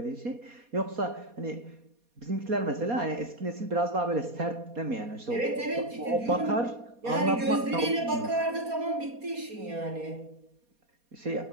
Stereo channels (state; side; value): late; left; 4.2 ms